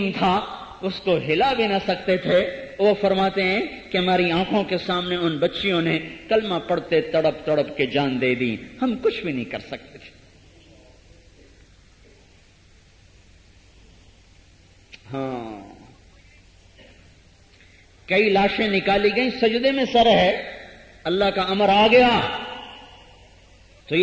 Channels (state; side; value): identical; both; correlation 1.00